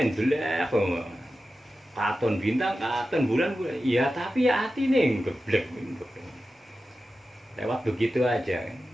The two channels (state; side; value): normal; both; correlation 0.93